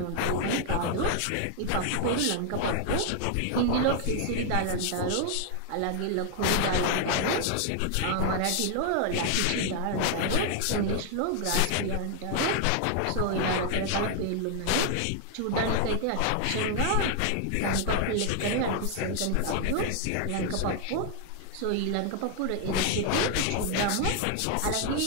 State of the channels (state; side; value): different; both; correlation 0.00